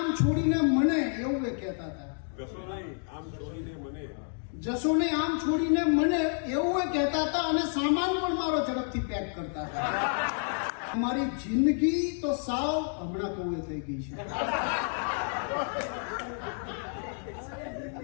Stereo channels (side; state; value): right; silent; 58 dB below the other